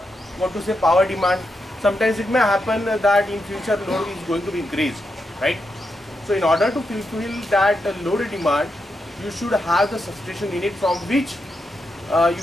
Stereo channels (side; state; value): both; normal; correlation 0.85